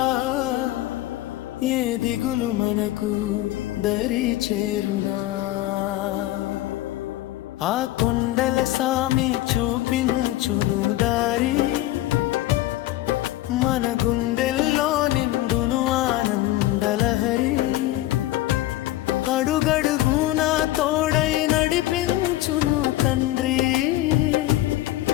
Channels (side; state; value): right; quieter; 15.9 dB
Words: ఏ దిగులు మనకు దరి చేరునా. ఆ కొండల సామి చూపించును దారి, మన గుండెల్లో నిండును ఆనందలహరి. అడుగడుగునా తోడై నడిపించును తండ్రి,